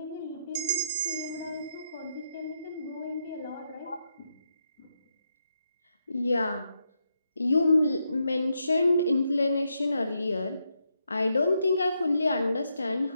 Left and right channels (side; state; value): both; inverted; correlation -0.81